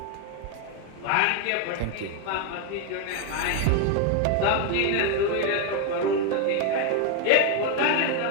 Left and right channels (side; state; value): both; different; correlation 0.01